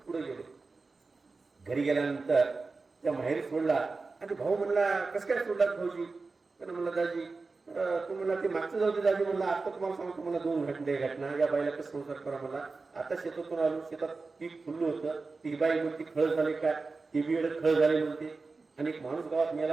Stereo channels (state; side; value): quieter; left; 4.0 dB